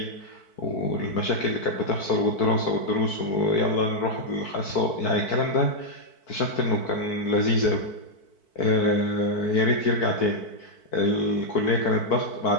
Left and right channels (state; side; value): late; right; 4.5 ms